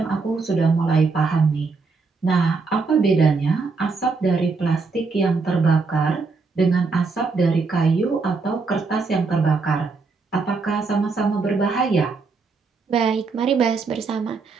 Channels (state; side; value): quieter; left; 4.3 dB